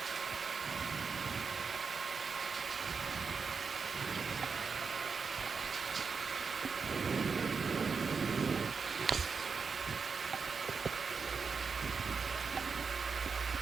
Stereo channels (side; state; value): left; quieter; 5.3 dB